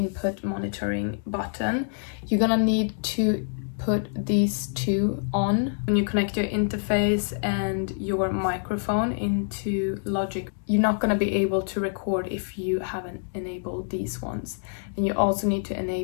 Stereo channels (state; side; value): silent; right; 61 dB below the other